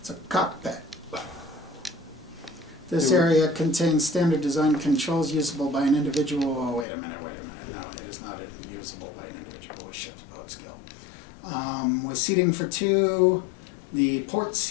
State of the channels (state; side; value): drops out; right; at 6.9 s